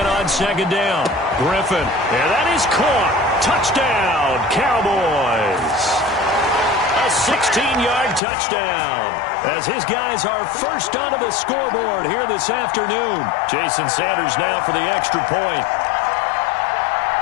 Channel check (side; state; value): right; drops out; at 8.2 s